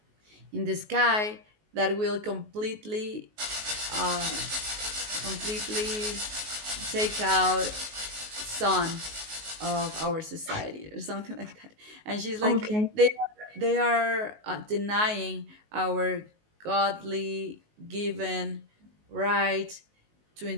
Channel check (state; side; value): late; left; 19 ms